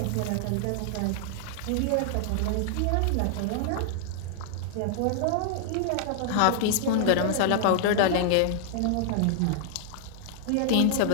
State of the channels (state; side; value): different; both; correlation -0.01